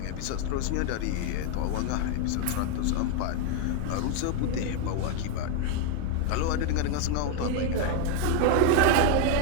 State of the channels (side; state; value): both; different; correlation 0.01